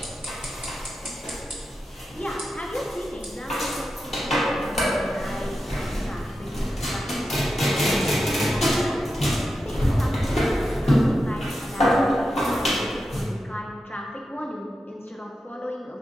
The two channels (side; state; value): both; normal; correlation 0.89